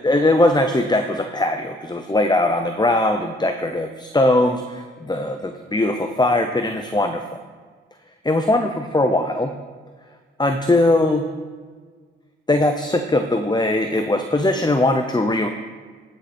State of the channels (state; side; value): normal; both; correlation 0.64